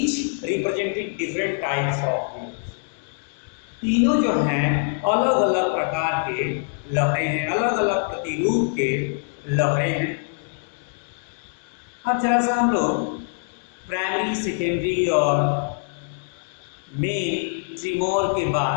representing different types of waves, तीनों जो हैं अलग अलग प्रकार के लहरें हैं, अलग अलग प्रतिरूप के लहरें हैं। अब जरा सा हम लोग प्राइमरी, सेकेंडरी और मेन ट्रिमोर के बाद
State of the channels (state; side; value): silent; right; digital silence